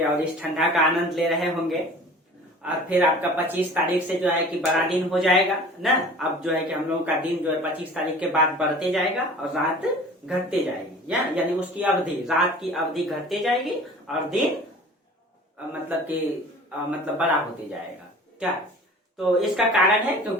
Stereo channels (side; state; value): both; normal; correlation 0.44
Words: और इस ठंडा का आनंद ले रहे होंगे। और फिर आपका 25 तारीख से जो है कि बड़ा दिन हो जाएगा ना। अब जो है कि हम लोगों का दिन जो है 25 तारीख के बाद बढ़ते जाएगा और रात घटते जाएगी, यानी उसकी अवधि, रात की अवधि घटते जाएगी और दिन मतलब बड़ा होते जाएगा। क्या? तो इसका कारण है